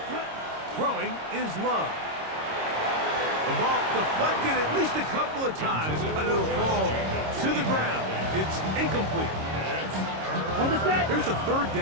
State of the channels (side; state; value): left; late; 26 ms